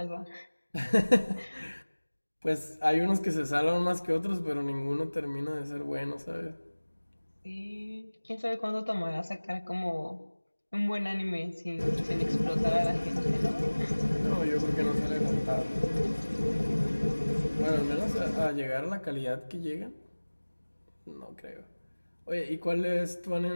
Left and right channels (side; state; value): both; inverted; correlation -1.00